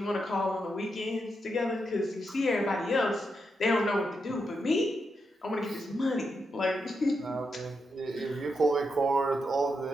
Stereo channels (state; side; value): normal; both; correlation 0.84